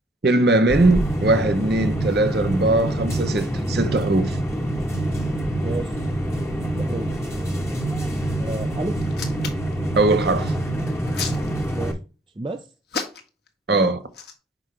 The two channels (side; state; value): both; normal; correlation 0.62